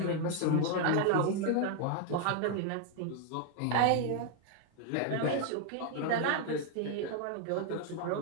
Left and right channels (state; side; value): different; both; correlation 0.00